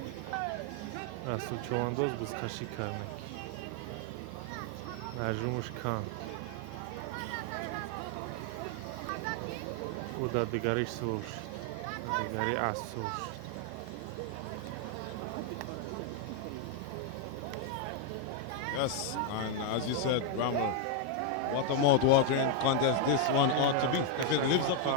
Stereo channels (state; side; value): different; both; correlation 0.00